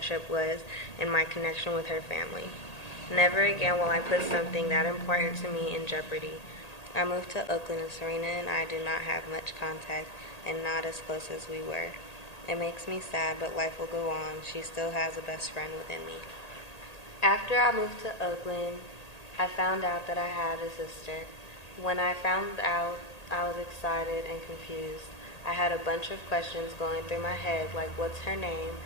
was and my connection with her family. Never again will I put something that important to me in jeopardy. I moved to Oakland and Serena and I did not have much contact and not as close as we were. It makes me sad, but life will go on. She still has a best friend within me. After I moved to Oakland, I found out that I had a sister. When I found out, I was excited and confused. I had a bunch of questions going through my head, like what's her name,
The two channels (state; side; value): late; right; 1.8 ms